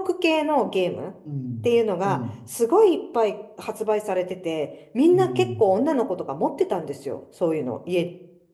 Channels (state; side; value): identical; both; correlation 1.00